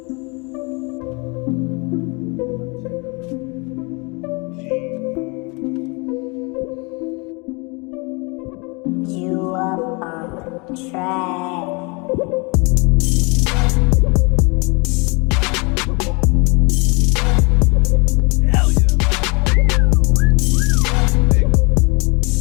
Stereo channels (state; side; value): quieter; right; 29.9 dB